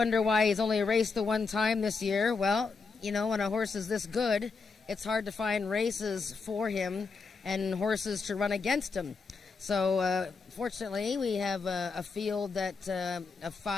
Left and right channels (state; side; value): quieter; right; 4.6 dB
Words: why he's only raced the 1 time this year. Well, you know, when a horse is this good, it's hard to find races for him and horses to run against him. So, fortunately, we have a field of